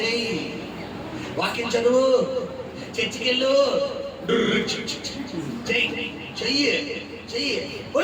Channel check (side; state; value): both; identical; correlation 1.00